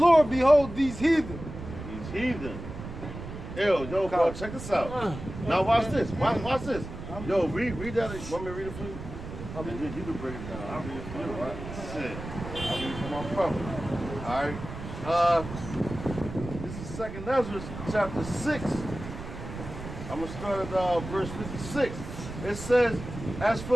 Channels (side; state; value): right; noise; rumble, 10 dB below the sound